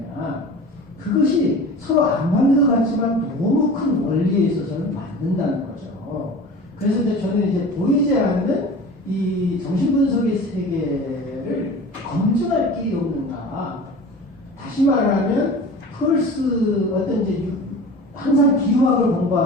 그것이 서로 안 맞는 것 같지만 너무 큰 원리에 있어서는 맞는다는 거죠. 그래서 이제 저는 이제 보이지 않는 이 정신분석의 세계를 검증할 길이 없는가. 다시 말하면 펄스 어떤 이제 항상 기호학을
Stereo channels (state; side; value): normal; both; correlation 0.38